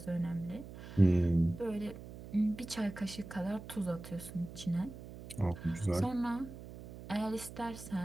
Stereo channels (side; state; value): right; noise; hum, 13 dB below the sound